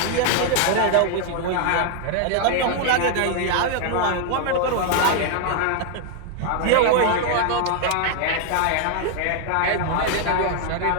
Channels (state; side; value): different; both; correlation 0.00